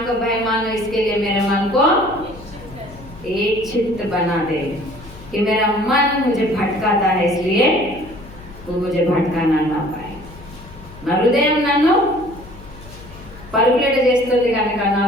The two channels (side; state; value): left; noise; hum, 18 dB below the sound